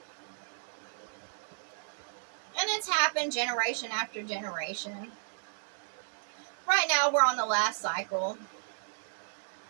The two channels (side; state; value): left; silent; digital silence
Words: And it's happened generation after generation. Right now we're on the last cycle.